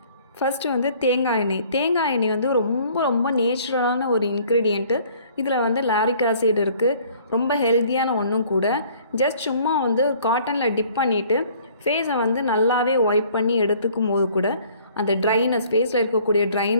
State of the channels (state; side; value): inverted; both; correlation -0.56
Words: ஃபஸ்ட்டு வந்து தேங்காய் எண்ணெய். தேங்காய் எண்ணெய் வந்து ரொம்ப ரொம்ப நேச்சுரலான ஒரு இன்க்ரீடியண்ட்டு. இதில் வந்து லாரிக் ஆசிட் இருக்குது. ரொம்ப ஹெல்த்தியான ஒன்றும் கூட. ஜஸ்ட் சும்மா வந்து காட்டனில் டிப் பண்ணிவிட்டு ஃபேஸை வந்து நல்லாவே ஒய்ப் பண்ணி எடுத்துக்கும் போது கூட அந்த ட்ரைனஸ், ஃபேஸில் இருக்கக்கூடிய